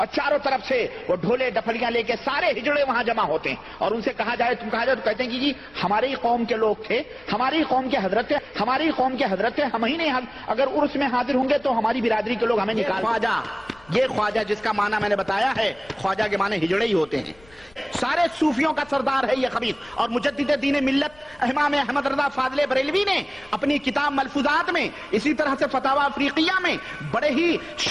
چاروں طرف سے وہ ڈھولے ڈپڑیاں لے کے سارے ہجڑے وہاں جمع ہوتے ہیں. اور ان سے کہا جائے تو کہتے ہیں کہ جی ہماری قوم کے لوگ تھے، ہماری قوم کے حضرت تھے، ہم ہی نہیں، اگر عرس میں حاضر ہوں گے تو ہماری برادری کے لوگ ہمیں نکال. یہ خواجہ جس کا معنی میں نے بتایا ہے، خواجہ کے معنی ہجڑے ہی ہوتے ہیں. سارے صوفیوں کا سردار ہے یہ خبیث. اور مجدد دین ملت امام احمد رضا فاضل بریلوی نے اپنی کتاب ملفوظات میں، اسی طرح سے فتاوی افریقیہ میں بڑے ہی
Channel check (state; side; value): noise; left; rumble, 27 dB below the sound